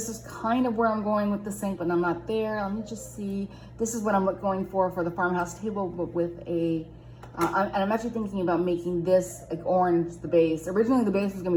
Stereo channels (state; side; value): identical; both; correlation 1.00